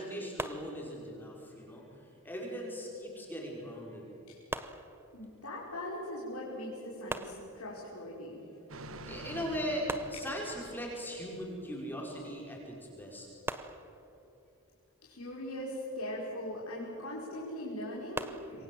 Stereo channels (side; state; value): both; normal; correlation 0.28